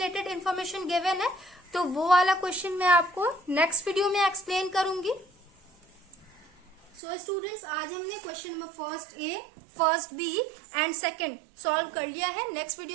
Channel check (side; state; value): left; drops out; at 7.0 s